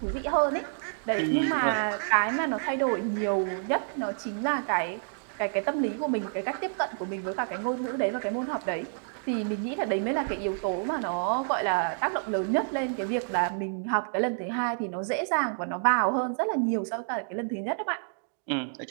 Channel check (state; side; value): silent; left; digital silence